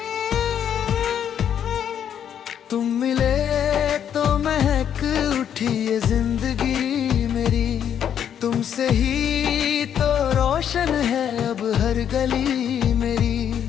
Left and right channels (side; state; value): right; quieter; 9.1 dB